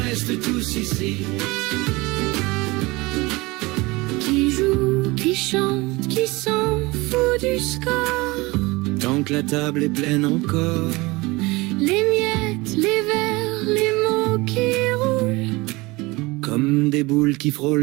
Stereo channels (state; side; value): quieter; left; 22.9 dB